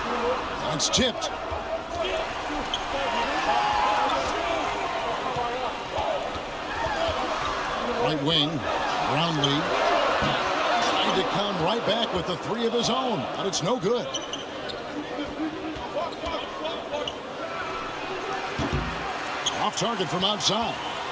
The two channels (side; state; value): both; identical; correlation 1.00